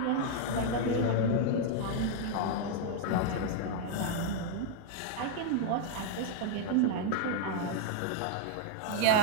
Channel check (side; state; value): both; different; correlation 0.00